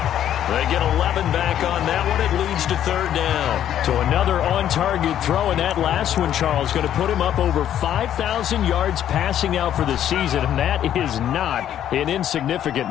They get 11 back on that one. It leads to third down. So another on-target throw, and that last one, Charles, going to put him up over 5,000 yards passing out for the season, and that is not an insignificant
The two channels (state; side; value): quieter; right; 10.7 dB